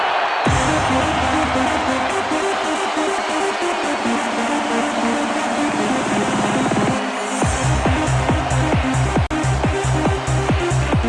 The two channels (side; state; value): both; identical; correlation 1.00